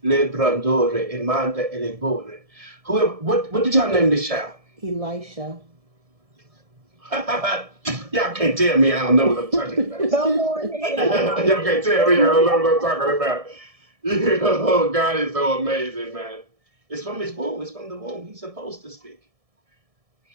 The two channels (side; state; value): left; late; 1.7 ms